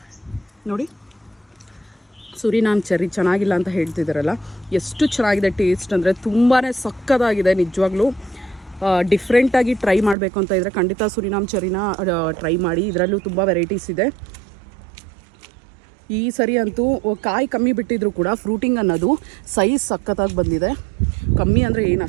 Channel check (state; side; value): drops out; left; at 10.2 s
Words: ನೋಡಿ, ಸುರಿನಾಮ್ ಚೆರ್ರಿ ಚೆನ್ನಾಗಿಲ್ಲ ಅಂತ ಹೇಳ್ತಿದ್ದಾರಲ್ಲ, ಎಷ್ಟು ಚೆನ್ನಾಗಿದೆ ಟೇಸ್ಟ್ ಅಂದರೆ ತುಂಬಾ ಸಕ್ಕತ್ತಾಗಿದೆ ನಿಜವಾಗ್ಲೂ. ಡಿಫ್ರೆಂಟಾಗಿ ಟ್ರೈ ಮಾಡಬೇಕು ಅಂತ ಇದ್ದರೆ ಖಂಡಿತ ಸುರಿನಾಮ್ ಚೆರ್ರಿನ ಟ್ರೈ ಮಾಡಿ. ಇದರಲ್ಲೂ ತುಂಬ ವೆರೈಟೀಸ್ ಇದೆ. ಈ ಸರಿ ಅಂತೂ ಕಾಯಿ ಕಮ್ಮಿ ಬಿಟ್ಟಿದ್ರು ಕೂಡ ಫ್ರೂಟಿಂಗ್ ಅನ್ನೋದು ಸೈಜ್ ಸಕ್ಕತ್ತಾಗಿ ಬಂದಿದೆ. ಕಮ್ಮಿ ಅಂದರೆ ಏನು